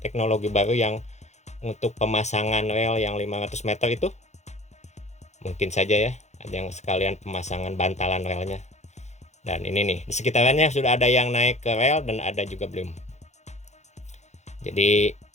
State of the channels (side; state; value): right; late; 0.33 ms